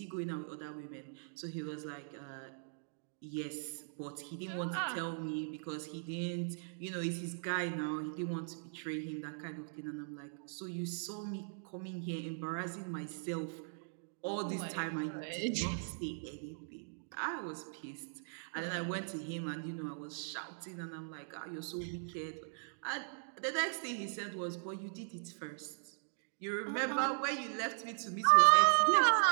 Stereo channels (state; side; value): silent; left; digital silence